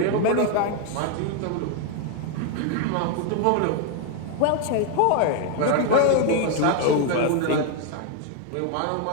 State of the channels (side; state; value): both; different; correlation 0.01